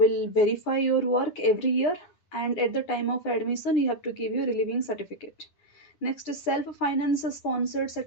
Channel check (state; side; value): late; right; 10 ms